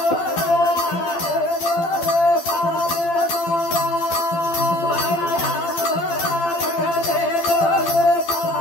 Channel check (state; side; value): late; right; 12 ms